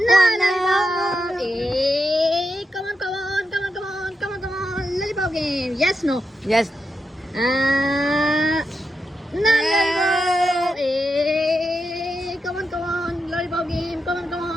Come on. Lollipop game. Yes, no. Yes. No lollipop. Come on. Lollipop game.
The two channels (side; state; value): both; normal; correlation 0.86